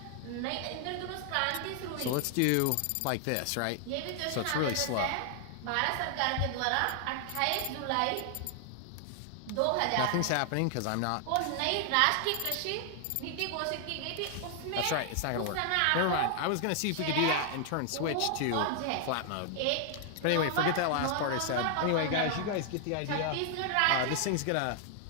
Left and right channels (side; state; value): both; different; correlation 0.00